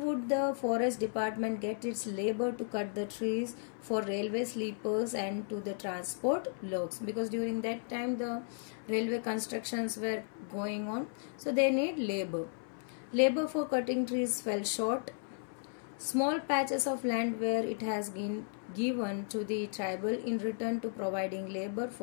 the forest department get its labor to cut the trees for railway sleepers and to the transport logs? Because during that time the railway constructions were going on, so they need labor. Labor for cutting trees fell short. Small patches of land where it has been given to the tribal in return to providing labor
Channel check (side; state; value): right; silent; 55 dB below the other